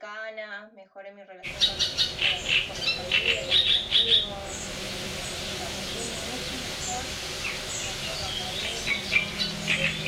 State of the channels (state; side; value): identical; both; correlation 1.00